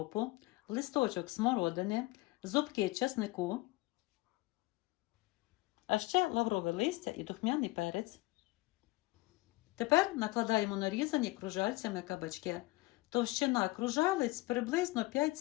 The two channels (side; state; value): right; quieter; 20.5 dB